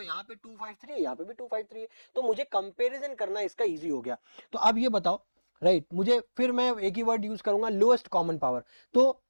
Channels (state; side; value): inverted; both; correlation -1.00